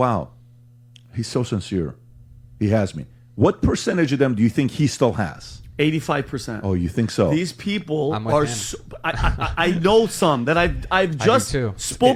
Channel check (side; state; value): both; identical; correlation 1.00